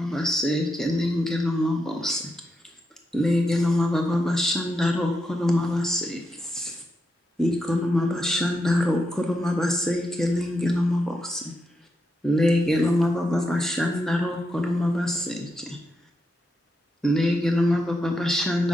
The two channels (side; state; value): both; normal; correlation 0.84